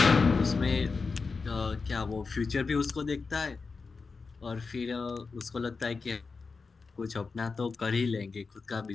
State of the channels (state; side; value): quieter; right; 4.5 dB